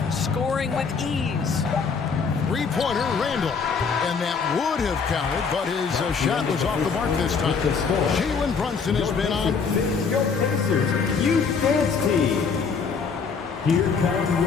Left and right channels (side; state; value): right; quieter; 5.5 dB